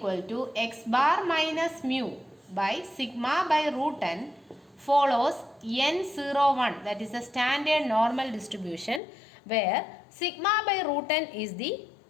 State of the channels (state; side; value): drops out; right; at 9.0 s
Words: to x bar minus mu by sigma by root n follows n01, that is a standard normal distribution where sigma by root n is the